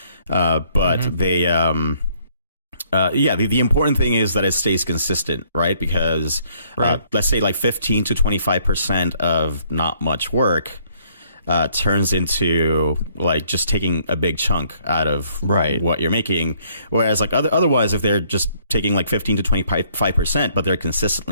But they, the important thing is that it stays consistent, right? Because, let's say like 15 to 25% of not much work, turns into like just taking a big chunk out of what you're making. Whereas like otherwise, if they're just taking like 15 to 25%, but they're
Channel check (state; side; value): inverted; both; correlation -0.65